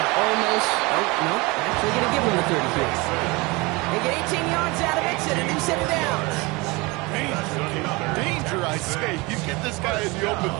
almost, nope, actually going to give him the 30 here. They get 18 yards out of it and a new set of downs. Danger, I say. You get this guy in the open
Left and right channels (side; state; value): left; quieter; 25.1 dB